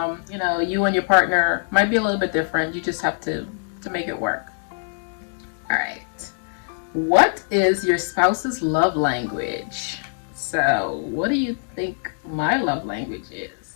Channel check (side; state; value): right; silent; digital silence